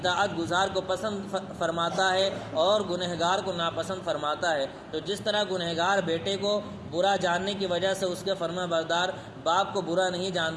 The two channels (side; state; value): both; identical; correlation 1.00